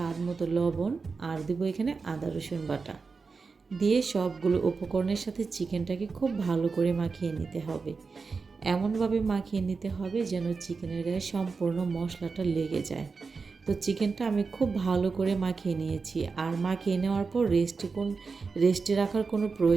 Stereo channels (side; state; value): left; quieter; 4.7 dB